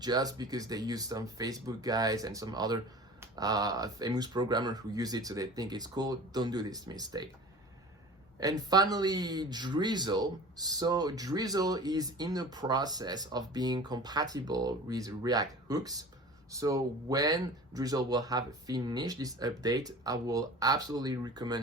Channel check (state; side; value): normal; both; correlation 0.39